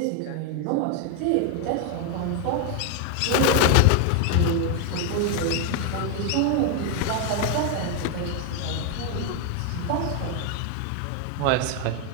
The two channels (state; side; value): different; both; correlation 0.01